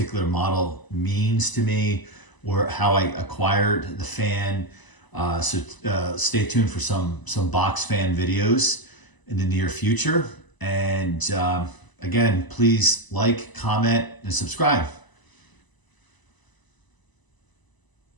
model means to me, or how I acquired the fan. So stay tuned for some box fan videos in the near future. And again, please like, comment, and subscribe.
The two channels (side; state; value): right; late; 1.0 ms